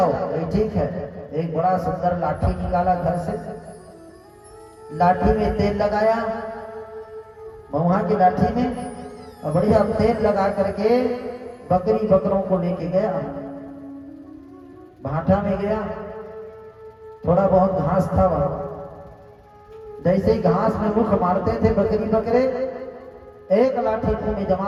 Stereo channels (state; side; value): identical; both; correlation 1.00